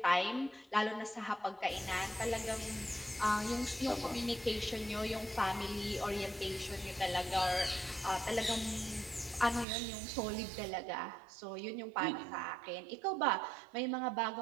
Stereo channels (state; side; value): drops out; left; at 9.7 s